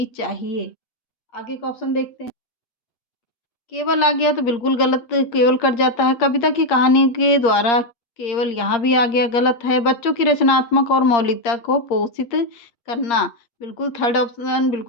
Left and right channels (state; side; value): late; right; 8.6 ms